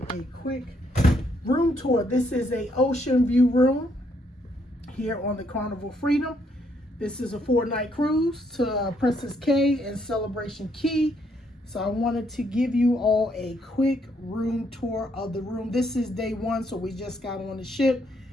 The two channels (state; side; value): normal; both; correlation 0.72